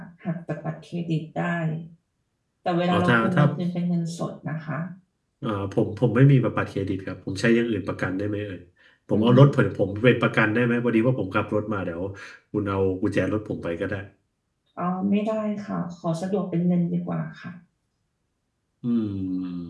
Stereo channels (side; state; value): both; identical; correlation 1.00